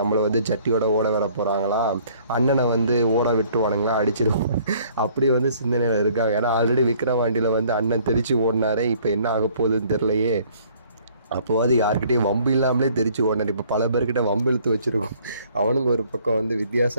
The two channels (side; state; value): both; inverted; correlation -0.59